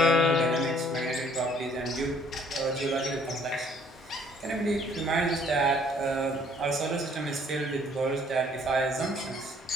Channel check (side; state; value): both; normal; correlation 0.60